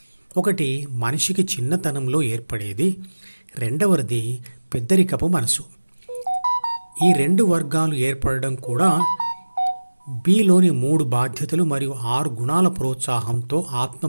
1 మనిషికి చిన్నతనంలో ఏర్పడేది, 2వది పెద్దరికపు మనసు. ఈ 2 వర్గాలు ఏర్పడడం కూడా బీలోని 3 బాధ్యతలు మరియు 6 గుణాల ప్రోత్సాహంతో ఆత్మ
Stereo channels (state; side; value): inverted; both; correlation -1.00